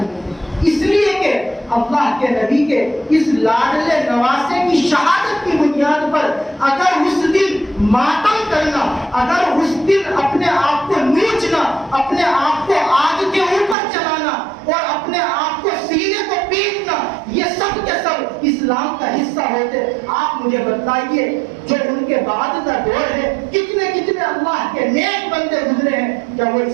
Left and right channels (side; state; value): left; drops out; at 13.8 s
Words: اس لیے کہ اللہ کے نبی کے اس لاڈلے نواسے کی شہادت کی بنیاد پر اگر اس دن ماتم کرنا، اگر اس دن اپنے آپ کو نوچنا، اپنے آپ کو آگ کے اوپر چلانا اور اپنے آپ کو سینے کو پیٹنا، یہ سب کے سب اسلام کا حصہ ہوتے۔ آپ مجھے بتا بتلائیے جو ان کے بعد کا دور ہے کتنے کتنے اللہ کے نیک بندے گزرے ہیں، کیا وہ